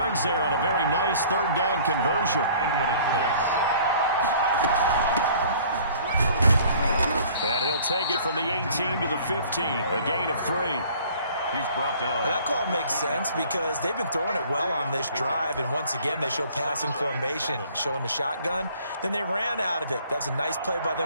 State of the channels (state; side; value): inverted; both; correlation -0.53